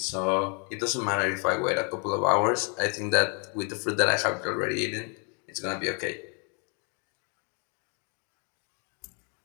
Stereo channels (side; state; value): right; quieter; 37.0 dB